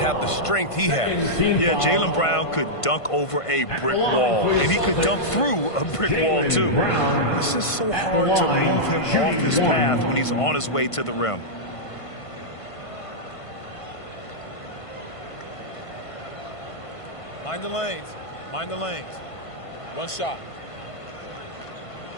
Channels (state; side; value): late; right; 1.5 ms